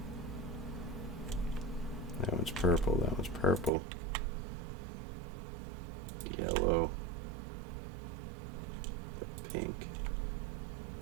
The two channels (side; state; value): left; drops out; at 3.7 s